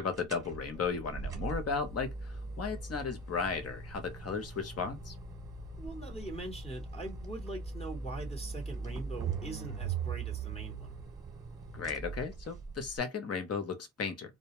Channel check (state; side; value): normal; both; correlation 0.31